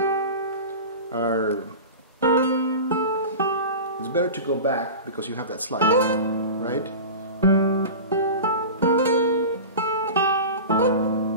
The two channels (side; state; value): both; inverted; correlation -0.31